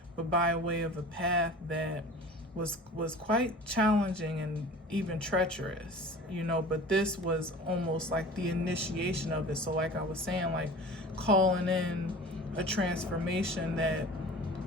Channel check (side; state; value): both; normal; correlation 0.40